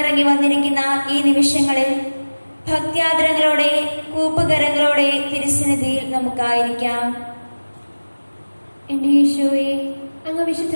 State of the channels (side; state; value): both; inverted; correlation -1.00